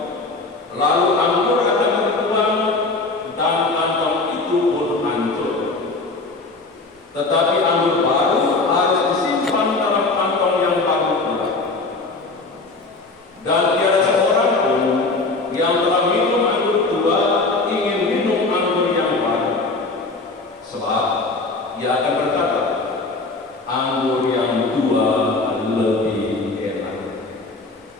lalu anggur akan berkurang dan kantong itu pun hancur. Tetapi anggur baru harus disimpan dalam kantong yang baru pula. Dan tiada seorang pun yang telah minum anggur tua ingin minum anggur yang baru, sebab ia akan berkata, anggur yang tua lebih enak.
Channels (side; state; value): right; quieter; 3.5 dB